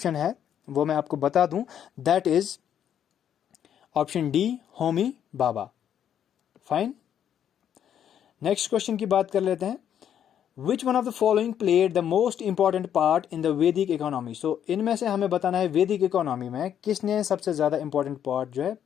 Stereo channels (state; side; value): quieter; right; 9.5 dB